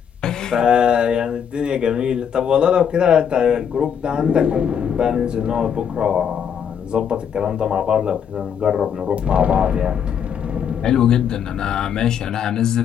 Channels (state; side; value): quieter; right; 7.9 dB